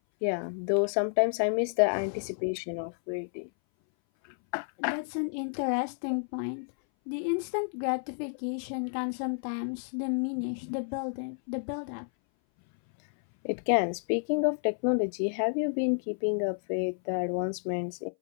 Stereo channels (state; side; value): silent; right; 57 dB below the other